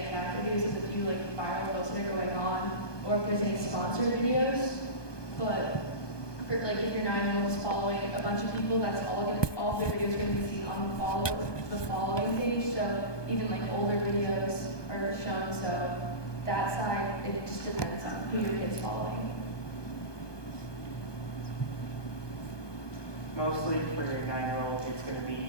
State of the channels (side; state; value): right; late; 1.2 ms